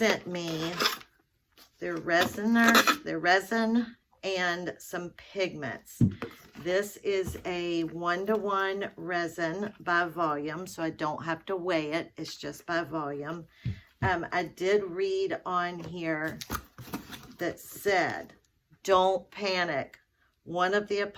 me their resin and some pigments. This is a 1-to-1 resin by volume, so I don't have to weigh it. It's just by volume. I did read on here that said, don't panic. One of the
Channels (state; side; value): identical; both; correlation 1.00